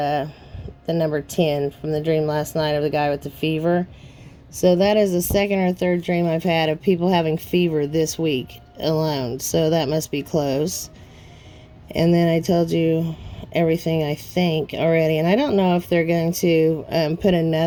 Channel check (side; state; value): both; identical; correlation 1.00